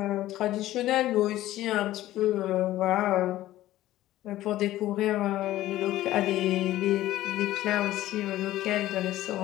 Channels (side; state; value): right; quieter; 14.8 dB